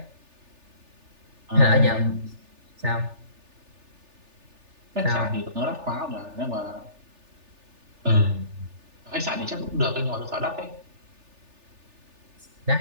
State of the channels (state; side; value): late; left; 3.4 ms